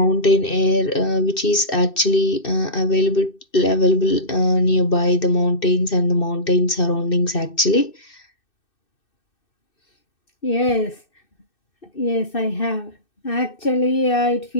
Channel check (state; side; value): late; right; 2.6 ms